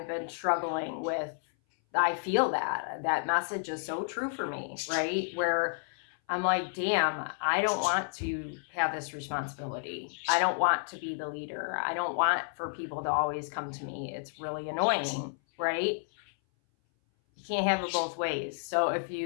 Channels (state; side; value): silent; right; 57 dB below the other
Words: been struggling with, I feel that message is so true for me, right? Where I'm like, damn, I don't want to have this responsibility. I don't want to be the leader. I don't want for people to always come to me. It's really annoying, right? You can't have it both ways. So if